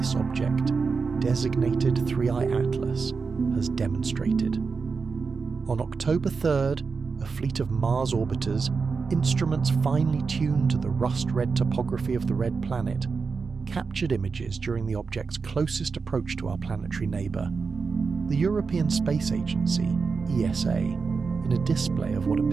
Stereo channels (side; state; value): left; quieter; 4.9 dB